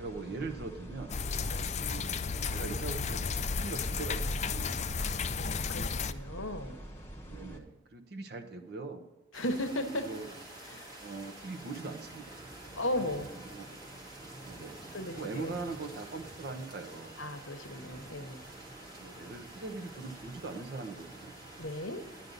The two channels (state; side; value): normal; both; correlation 0.29